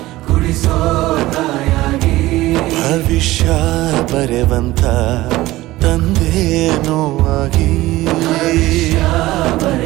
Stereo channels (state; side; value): quieter; left; 17.5 dB